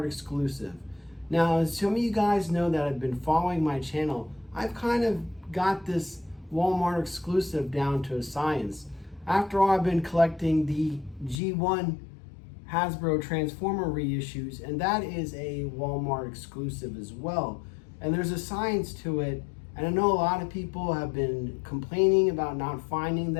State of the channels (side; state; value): right; drops out; at 11.4 s